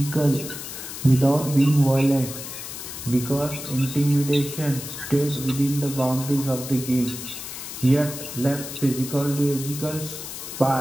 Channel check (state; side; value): noise; left; hiss, 9 dB below the sound